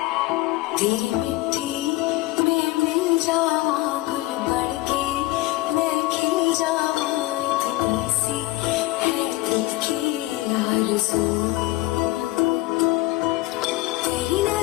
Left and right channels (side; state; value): right; quieter; 18.9 dB